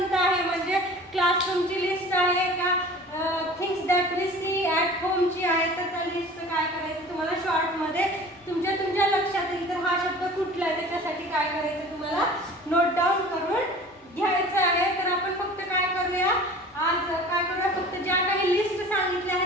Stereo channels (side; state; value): both; normal; correlation 0.42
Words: आहे, म्हणजे क्लासरूमची लिस्ट आहे का, things that we see at होमची आहे, तर त्या लिस्टचं काय करायचं तुम्हाला शॉर्ट मध्ये तुमच्या लक्षात येईल तर हा शब्द कुठला आहे त्याच्यासाठी काय करायचं तुम्हाला नोट डाऊन करून घ्यायचं आहे. तर आपण फक्त काय करूया, आज काय करूया, फक्त ज्या काही लिस्ट सांगितल्या